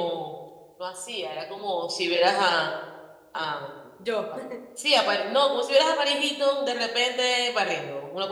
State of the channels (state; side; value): identical; both; correlation 1.00